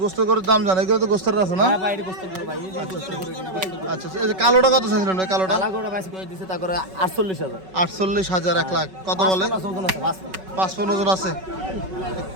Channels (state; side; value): late; left; 5.3 ms